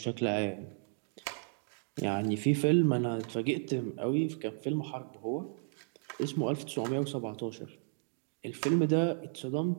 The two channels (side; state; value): left; silent; digital silence